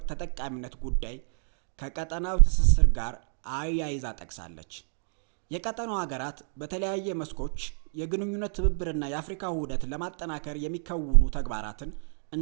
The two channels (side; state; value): left; silent; 59 dB below the other